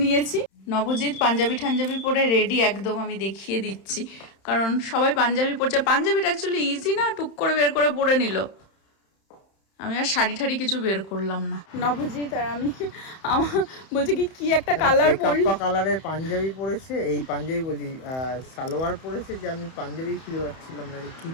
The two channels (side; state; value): right; late; 31 ms